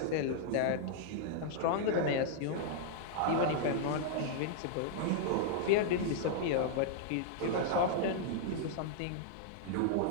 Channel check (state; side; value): different; both; correlation -0.01